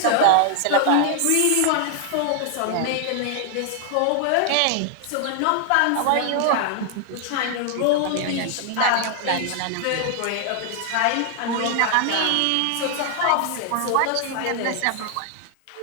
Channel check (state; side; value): different; both; correlation 0.00